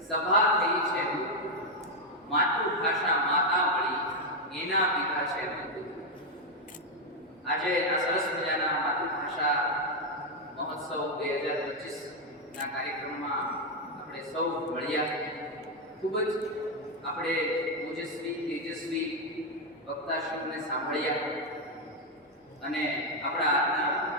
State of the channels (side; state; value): both; normal; correlation 0.03